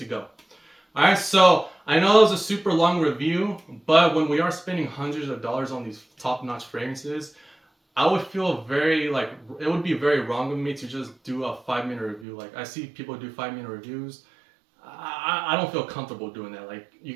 go. All right, so I know that was a super long review, but when we are spending hundreds of dollars on these top-notch fragrances, I would feel very like it would be very wrong of me to just do a 5-minute review. Like I see people do 5-minute reviews. I don't feel comfortable doing that. Like you're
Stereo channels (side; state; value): left; drops out; at 12.2 s